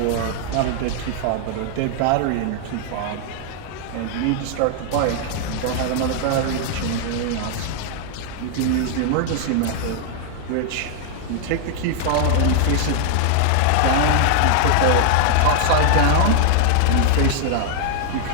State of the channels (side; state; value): both; different; correlation 0.00